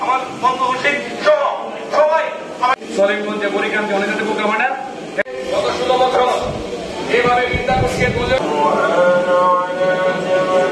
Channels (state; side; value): identical; both; correlation 1.00